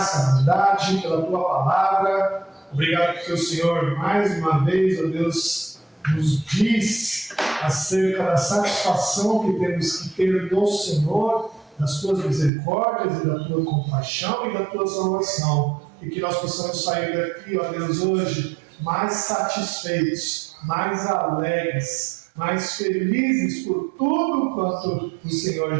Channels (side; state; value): left; drops out; at 12.5 s